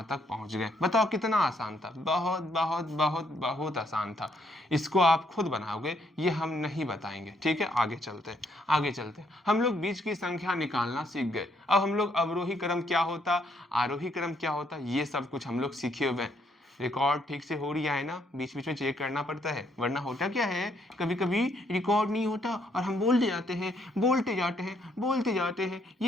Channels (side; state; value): both; normal; correlation 0.71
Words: तक पहुँच गए। बताओ कितना आसान था, बहुत बहुत बहुत बहुत आसान था। इसको आप खुद बनाओगे, ये हम नहीं बताएंगे, ठीक है। आगे चलते हैं, आगे चलते हैं। हम लोग बीच की संख्या निकालना सीख गए, अब हम लोग अवरोही क्रम क्या होता, आरोही क्रम क्या होता, ये सब कुछ हम लोग सीखे हुए हैं। रिकॉर्ड ठीक से हो रही है ना, बीच बीच में चेक करना पड़ता है, वरना होता क्या है कभी कभी रिकॉर्ड नहीं होता और हम बोलते जाते हैं बोलते जाते हैं बोलते जाते हैं,